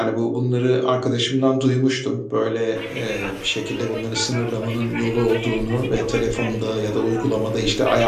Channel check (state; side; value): identical; both; correlation 1.00